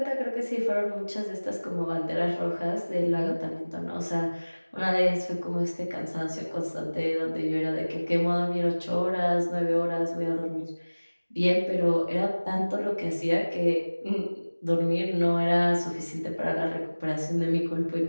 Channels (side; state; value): both; inverted; correlation -1.00